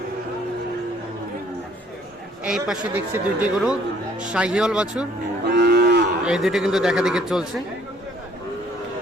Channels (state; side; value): normal; both; correlation 0.61